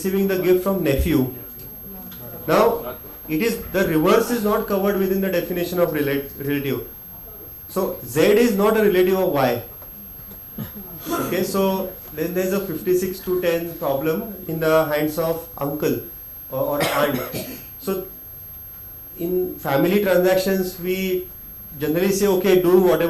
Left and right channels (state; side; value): identical; both; correlation 1.00